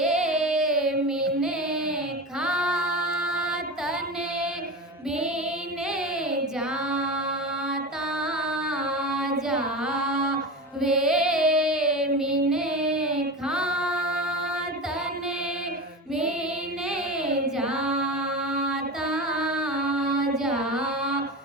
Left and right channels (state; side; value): normal; both; correlation 0.26